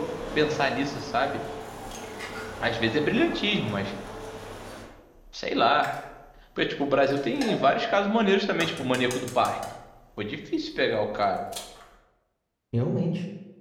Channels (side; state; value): both; identical; correlation 1.00